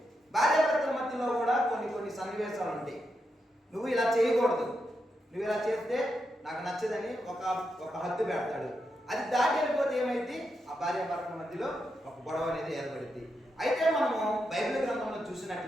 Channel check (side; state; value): both; normal; correlation 0.84